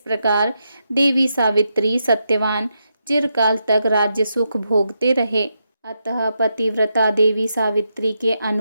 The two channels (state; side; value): inverted; both; correlation -0.84